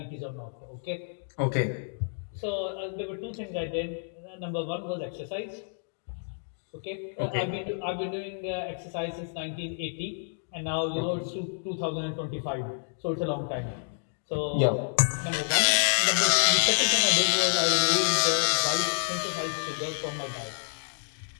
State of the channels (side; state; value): right; silent; digital silence